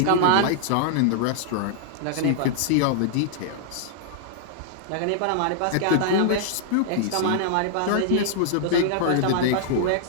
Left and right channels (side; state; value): both; different; correlation -0.01